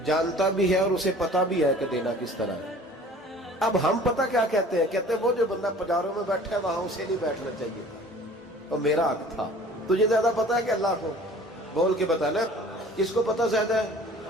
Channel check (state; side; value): normal; both; correlation 0.47